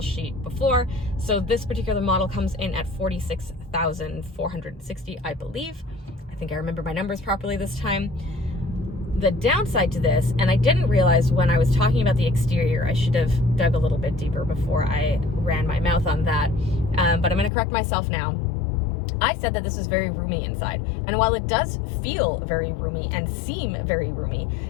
sheet before. So this particular model comes in at $46,460, I believe. I think I remember my numbers properly this time. The downside to this, and I didn't realize when I was talking about the exterior, I should have dug a little bit deeper before I ran my mouth on that, but I'm going to correct myself now. I said that this is very roomy inside. And while it does feel very roomy and seem very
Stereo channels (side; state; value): right; drops out; at 17.5 s